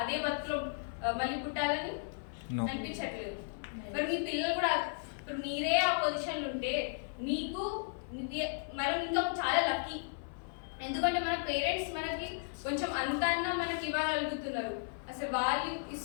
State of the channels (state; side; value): silent; right; 54 dB below the other